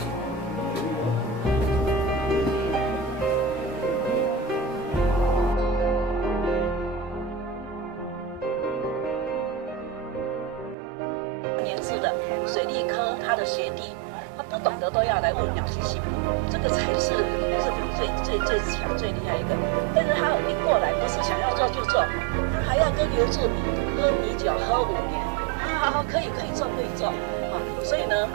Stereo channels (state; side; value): drops out; left; at 10.8 s